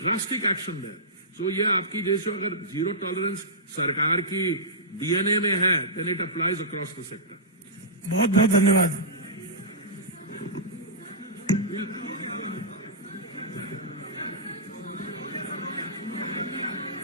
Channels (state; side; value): normal; both; correlation -0.16